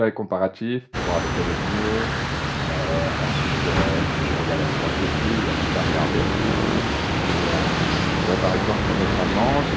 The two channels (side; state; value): both; identical; correlation 1.00